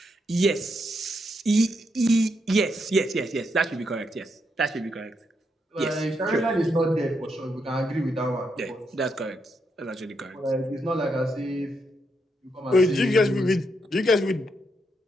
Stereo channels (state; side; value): normal; both; correlation 0.80